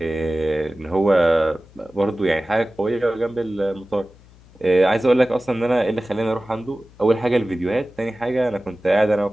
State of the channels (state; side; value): noise; left; hum, 25 dB below the sound